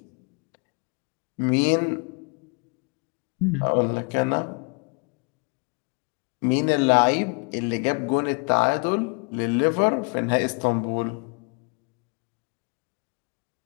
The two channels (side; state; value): right; quieter; 34.6 dB